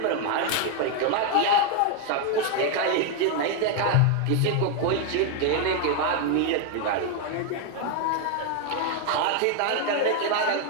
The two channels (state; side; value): different; both; correlation 0.01